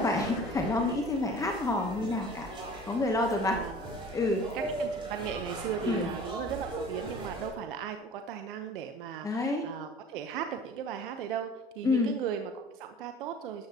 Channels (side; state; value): both; normal; correlation 0.45